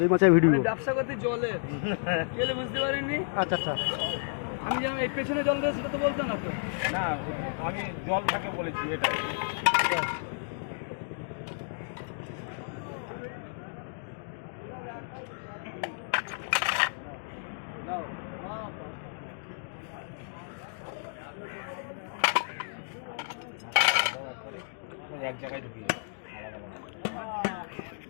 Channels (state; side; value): silent; right; digital silence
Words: মাছের ভিডিও। ব্যবসা করতে জলে গেলে বুঝতে পারিনি। আচ্ছা আচ্ছা, আমি যেন এই পেছনে জল দেয় সেটা তো বলতো না তো। না, আমি জল থাকে বলেছি এটা। এক জায়গায় ঢুকিয়ে